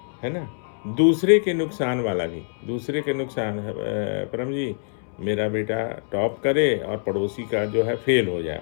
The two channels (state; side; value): silent; right; 62 dB below the other